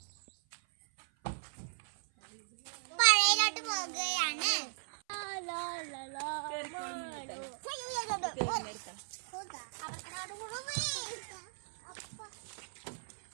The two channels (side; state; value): left; silent; 53 dB below the other